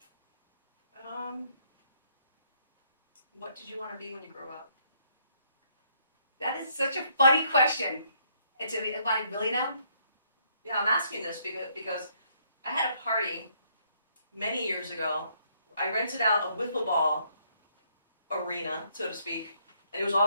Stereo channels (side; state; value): both; inverted; correlation -0.70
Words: What did you want to be when you grow up? That is such a funny question. It's I really know? Yeah, I'm asking this because I had a party many years ago. I rented out a wiffle ball arena, so to speak, and it was